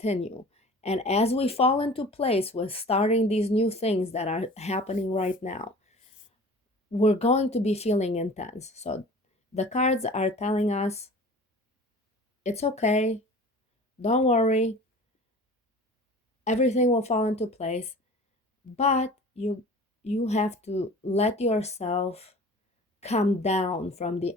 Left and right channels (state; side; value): normal; both; correlation 0.42